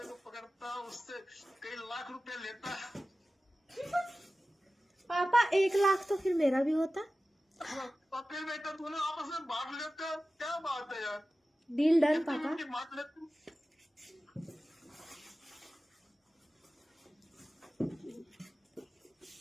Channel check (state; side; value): normal; both; correlation 0.95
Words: को पकड़ता, उससे कई लाख रुपए लेता। पापा 1 लाख तो फिर मेरा भी होता। और फिर बेटा दोनों आपस में बांट लेते हो, क्या बात है यार? डील डन पापा। बांट लेते।